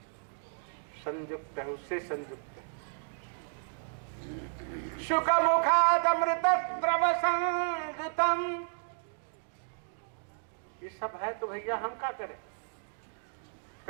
संयुक्त है, उससे संयुक्त है। शुक मुखाद अमृत द्रव संयुतम, ये सब है तो भैया हम क्या करें?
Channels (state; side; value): silent; left; digital silence